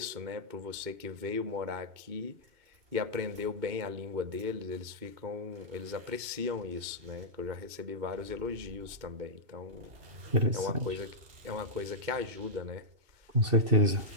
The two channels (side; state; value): left; late; 2.2 ms